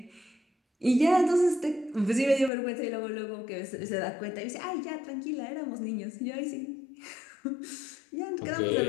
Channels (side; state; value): right; drops out; at 2.5 s